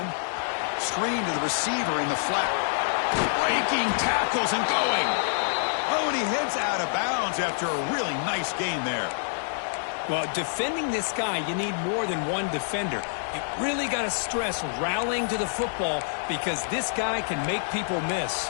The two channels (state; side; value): silent; right; digital silence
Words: Screen to the receiver in the flat. Breaking tackles and going. Oh, and he heads out of bounds after a really nice gain there. Well, defending this guy, you need more than one defender. You really got to stress rallying to the football because this guy can make people miss.